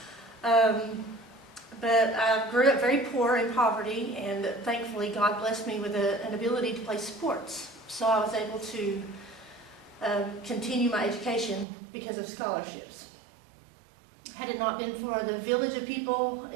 No. But I grew up very poor in poverty, and thankfully God blessed me with an ability to play sports. So I was able to continue my education because of scholarships. Had it not been for the village of people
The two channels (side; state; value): left; drops out; at 11.7 s